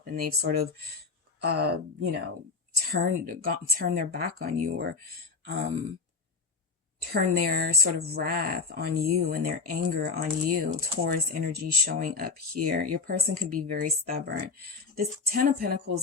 And they've sort of, turn their back on you, or turn their sort of wrath on you and their anger on you. Taurus energy showing up here. Your person could be very stubborn. This 10 of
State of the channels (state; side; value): quieter; right; 4.7 dB